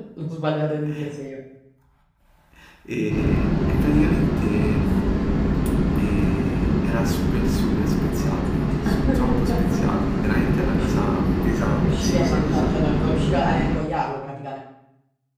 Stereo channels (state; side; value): identical; both; correlation 1.00